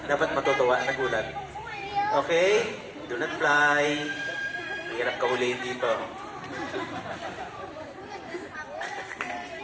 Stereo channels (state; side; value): identical; both; correlation 1.00